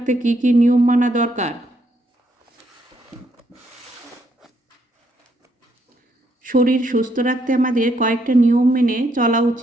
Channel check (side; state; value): both; normal; correlation 0.74